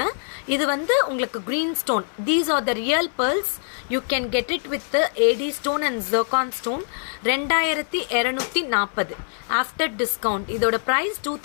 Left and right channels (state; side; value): silent; right; 63 dB below the other